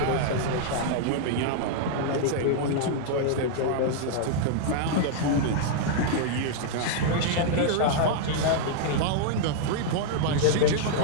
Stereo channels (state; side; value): different; both; correlation -0.01